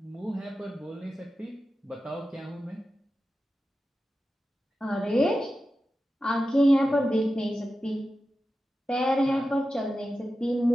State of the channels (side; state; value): both; normal; correlation 0.92